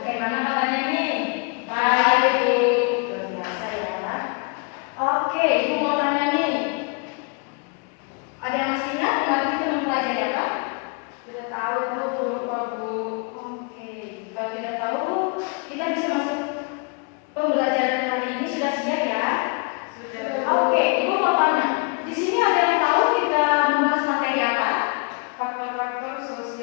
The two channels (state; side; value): quieter; right; 35.0 dB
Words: kabarnya nih? Baik Bu. Luar biasa ya. Oke, Ibu mau tanya nih. Ada yang masih ingat kemarin kita mempelajari apa? Tidak tahu Bu, lupa Bu. Oke, kalau tidak tahu kita bisa masuk pembelajaran hari ini. Sudah siap ya? Sudah. Oke, Ibu mau tanya. Di sini ada yang tahu kita membahas materi apa? Faktor-faktor